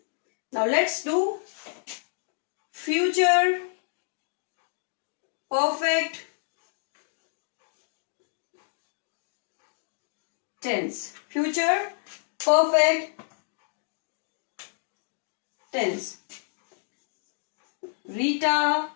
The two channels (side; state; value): right; silent; digital silence